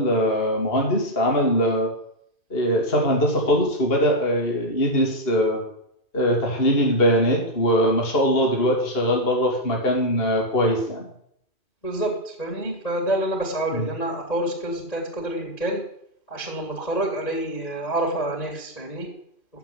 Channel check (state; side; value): late; right; 2.4 ms